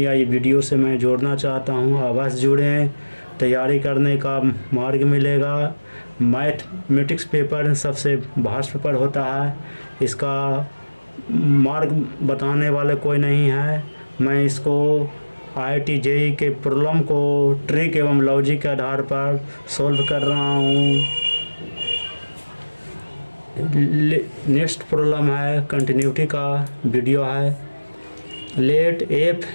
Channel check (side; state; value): both; inverted; correlation -1.00